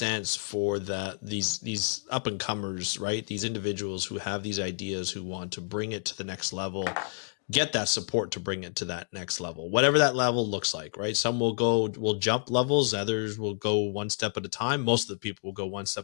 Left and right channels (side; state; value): right; silent; digital silence